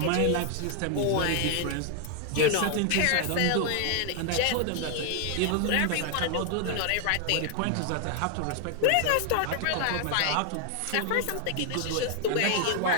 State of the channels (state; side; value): different; both; correlation 0.00